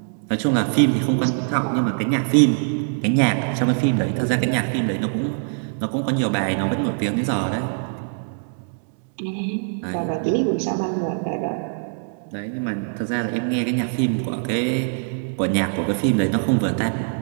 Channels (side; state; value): left; silent; 64 dB below the other